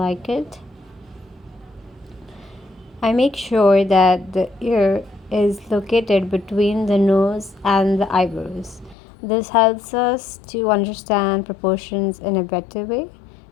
it. I make sure that the ear is located between the nose and the eyebrows. This helps us to understand proportions in a better way.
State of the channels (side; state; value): right; drops out; at 9.0 s